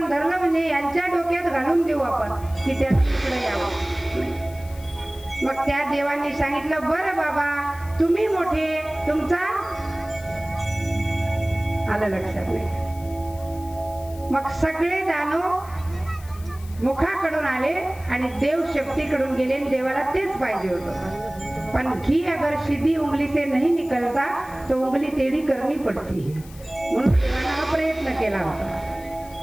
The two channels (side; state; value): left; noise; hiss, 21 dB below the sound